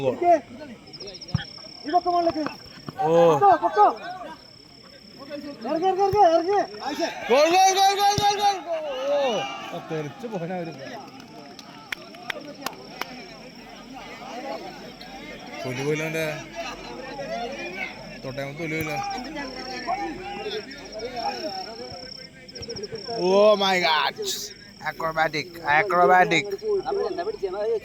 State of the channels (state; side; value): identical; both; correlation 1.00